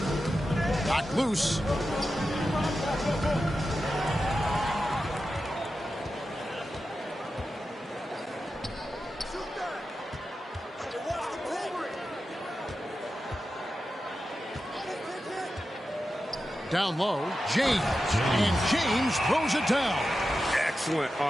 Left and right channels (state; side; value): normal; both; correlation 0.91